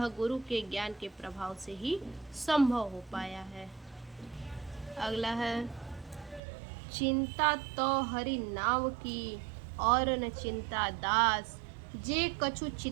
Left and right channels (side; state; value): left; drops out; at 6.4 s